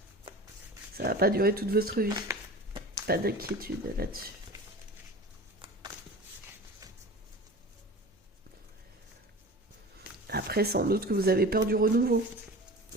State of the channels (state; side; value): normal; both; correlation 0.36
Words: Ça va pas durer toute votre vie. Pas d'inquiétude là-dessus. Après, sans doute que vous avez peur du renouveau.